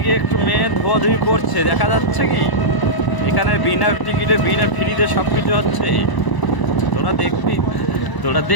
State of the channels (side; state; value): right; late; 1.0 ms